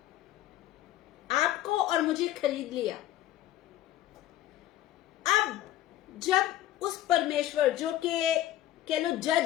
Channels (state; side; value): quieter; right; 13.7 dB